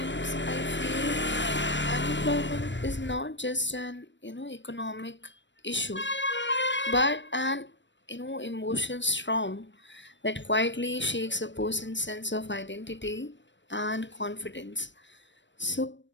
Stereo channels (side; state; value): right; late; 0.53 ms